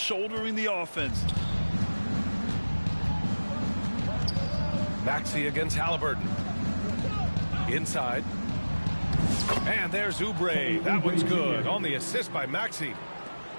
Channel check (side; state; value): both; inverted; correlation -1.00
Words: the offense. Maxey against Halliburton. Inside. And there's Oubre. That one's good on the assist by Maxey.